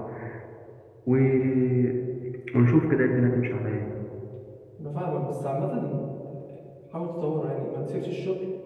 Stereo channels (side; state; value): both; identical; correlation 1.00